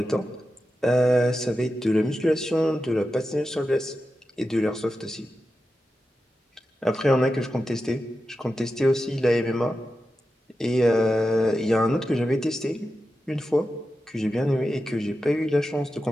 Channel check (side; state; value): both; normal; correlation 0.91